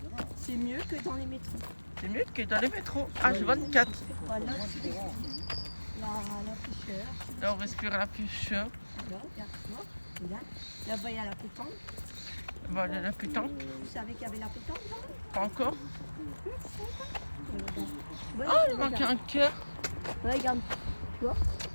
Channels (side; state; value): both; inverted; correlation -1.00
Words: C'est mieux que dans les métros. C'est mieux que dans les métros. H24. Voilà, tu respires. La fraîcheur. Là, on respire la fraîcheur. Là, regarde-moi. Regarde. Là-bas, il y a la pétanque. Voilà la pétanque. Vous savez qu'il y avait la pétanque là? Pas encore. Ouais, Ah, il manque un cœur. Ouais, regarde. Tu vois?